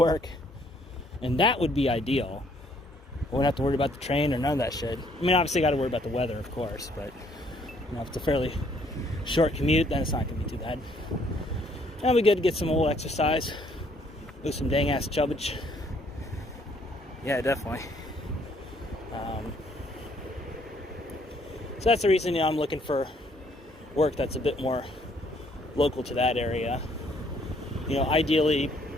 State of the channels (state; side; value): normal; both; correlation 0.65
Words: And that would be ideal. I wouldn't have to worry about the train or none of that shit. I mean, obviously, I got to worry about the weather, of course. But, you know, if it's a fairly short commute, then it's not going to be too bad. It'll be good to get some old exercise. Lose some dang-ass chubbage. Yeah, definitely. So that's the reason, you know, I'm looking for work that's a bit more local to that area. You know, ideally,